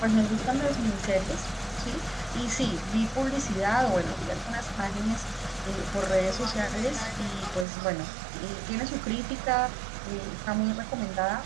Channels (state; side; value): drops out; left; at 7.7 s